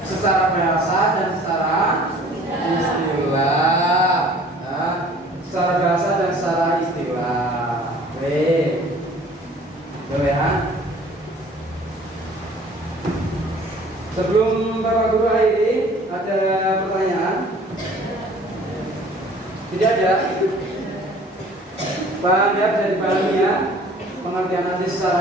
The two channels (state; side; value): normal; both; correlation 0.51